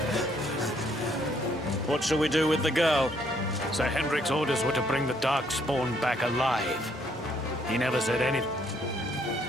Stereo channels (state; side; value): normal; both; correlation 0.68